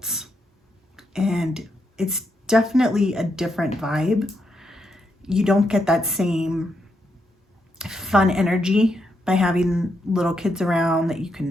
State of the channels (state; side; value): normal; both; correlation 0.80